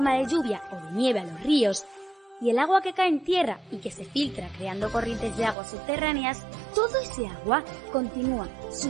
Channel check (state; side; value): drops out; left; at 5.6 s